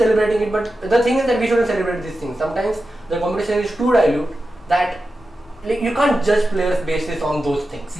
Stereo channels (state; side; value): normal; both; correlation 0.92